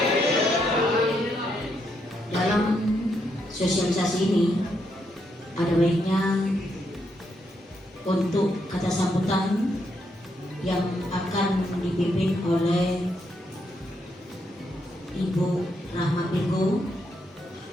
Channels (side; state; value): both; normal; correlation 0.78